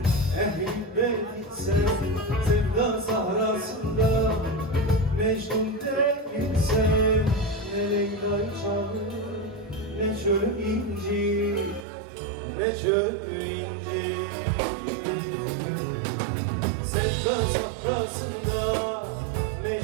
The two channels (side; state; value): left; drops out; at 11.9 s